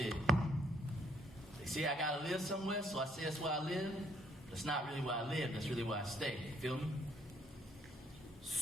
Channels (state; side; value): normal; both; correlation 0.67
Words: They say I gotta live somewhere, so I say that's where I live. But it's not really where I live, that's really where I stay. You feel me?